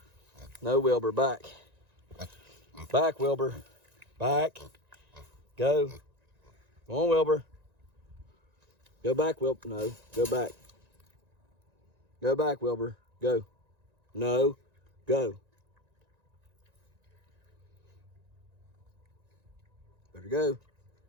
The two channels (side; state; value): left; late; 1.9 ms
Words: No, Wilbur, back. Back, Wilbur. Back. Go. Go on, Wilbur. Go back, Wilbur. No, go back. Go back, Wilbur. Go. No, go. Better go.